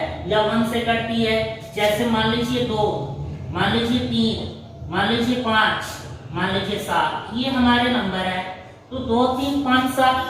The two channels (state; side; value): identical; both; correlation 1.00